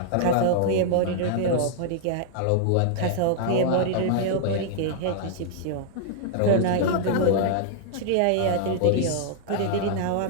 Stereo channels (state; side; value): different; both; correlation -0.01